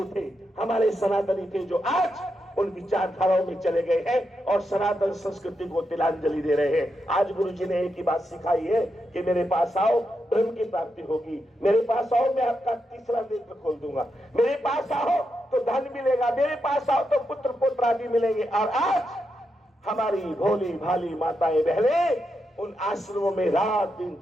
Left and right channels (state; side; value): normal; both; correlation 0.85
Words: थे, हमारे सनातनी थे, जो आज उन विचारधाराओं में चले गए हैं और सनातन संस्कृति को तिलांजलि दे रहे हैं। आज गुरु जी ने एक ही बात सिखाई है कि मेरे पास आओ, ब्रह्म की प्राप्ति होगी। मेरे पास आओ, मैं आपका तीसरा नेत्र खोल दूंगा। मेरे पास आओ तो धन मिलेगा, मेरे पास आओ तो पुत्र पुत्र आदि मिलेंगे। और आज हमारी भोली भाली माताएं बहनें उन आश्रमों में रात दिन